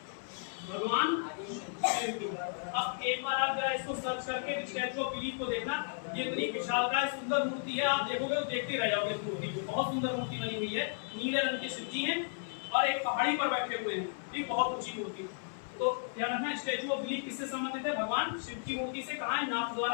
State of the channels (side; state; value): right; silent; 55 dB below the other